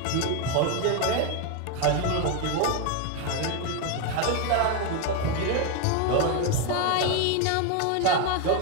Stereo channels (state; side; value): different; both; correlation 0.01